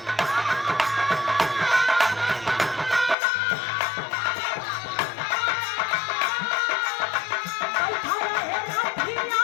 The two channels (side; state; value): right; drops out; at 3.2 s